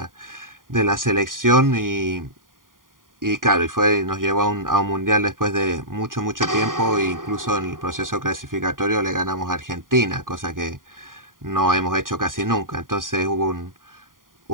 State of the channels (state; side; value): late; left; 0.90 ms